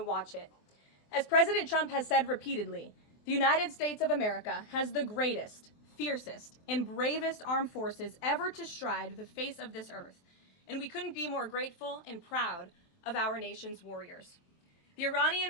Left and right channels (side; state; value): right; late; 24 ms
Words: it. As President Trump has said repeatedly, the United States of America has the greatest, fiercest, and bravest armed forces ever to stride the face of this earth, and we couldn't be more grateful and proud of our nation's warriors. The